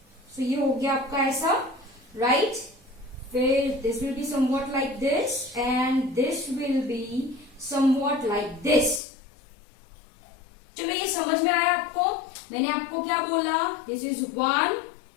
So ये हो गया आपका ऐसा, right? फिर this will be somewhat like this and this will be somewhat like this. चलो ये समझ में आया आपको? मैंने आपको क्या बोला? This is 1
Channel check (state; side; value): drops out; right; at 9.0 s